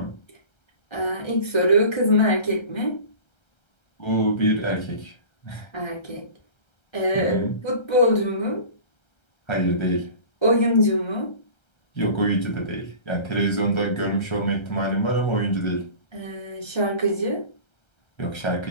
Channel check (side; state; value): right; late; 1.3 ms